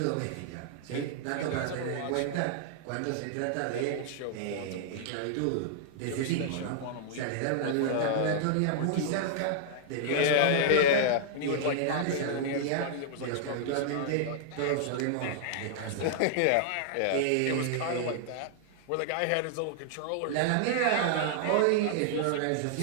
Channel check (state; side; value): different; both; correlation -0.01